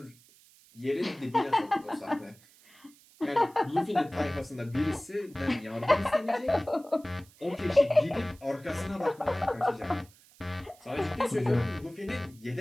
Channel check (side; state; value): right; noise; hiss, 27 dB below the sound